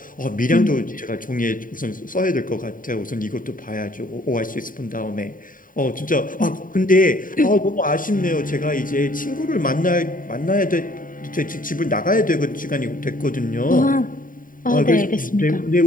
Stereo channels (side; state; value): right; late; 0.40 ms